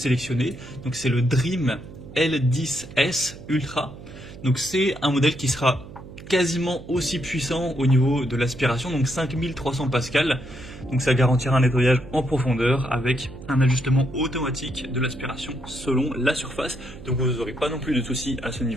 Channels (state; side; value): noise; right; hum, 16 dB below the sound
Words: donc c'est le Dream L10S Ultra. Donc c'est un modèle qui sera quasiment aussi puissant au niveau de l'aspiration, donc 5300 pascal, donc ça garantira un nettoyage en profondeur avec un ajustement automatique de l'aspiration selon la surface, donc vous n'aurez pas non plus de soucis à ce